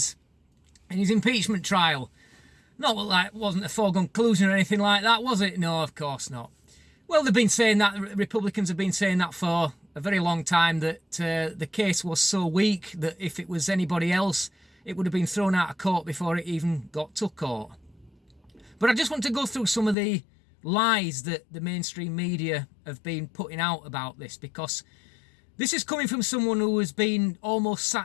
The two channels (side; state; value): right; drops out; at 20.0 s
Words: in his impeachment trial. Not like wasn't a foregone conclusion or anything like that, was it? No, of course not. Well, they've been saying that, Republicans have been saying that for a very long time, that the case was so weak that if it was anybody else, it would have been thrown out of court before it even got to court. But I just want to go through some of the lies that the mainstream media have been putting out about this, because this is coming from someone who has been almost